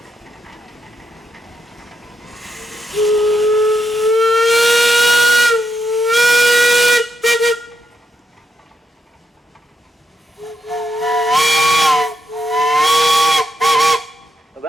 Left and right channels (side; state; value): both; normal; correlation 0.82